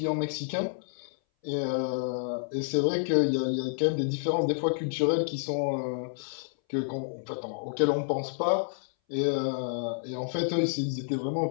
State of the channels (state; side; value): silent; right; 58 dB below the other